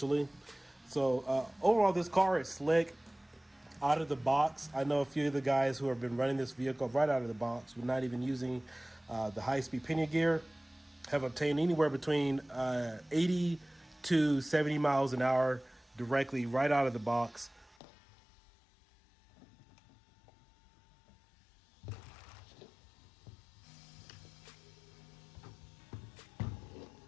So overall, this car is slick. Out of the box, I know a few of the guys who have been running this vehicle right out of the box, with not even using the high-speed pinion gear, have obtained anywhere between 80 to 70 miles an hour directly right out of the box.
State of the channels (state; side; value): drops out; right; at 17.8 s